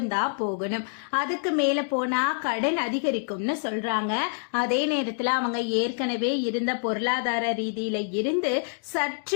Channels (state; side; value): silent; right; digital silence